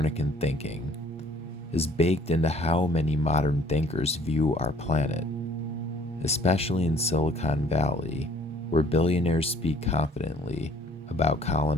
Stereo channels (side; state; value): both; normal; correlation 0.58